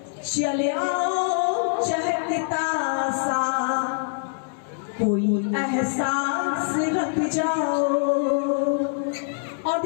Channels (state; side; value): silent; right; digital silence